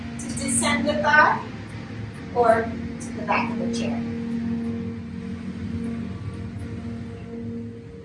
to descend the thigh, or to the back of the chair.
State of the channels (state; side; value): identical; both; correlation 1.00